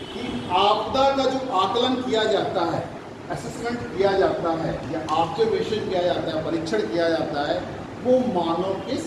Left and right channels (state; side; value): identical; both; correlation 1.00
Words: कि आपदा का जो आकलन किया जाता है, असेसमेंट किया जाता है या ऑब्जर्वेशन किया जाता है, परीक्षण किया जाता है, वो मानव के